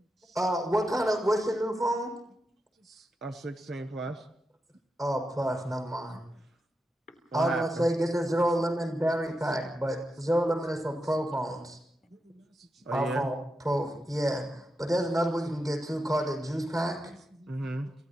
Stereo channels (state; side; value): normal; both; correlation 0.87